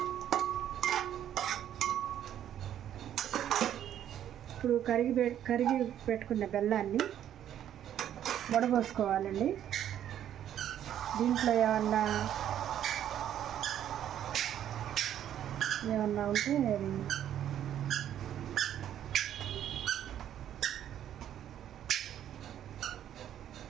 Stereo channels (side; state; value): left; quieter; 10.6 dB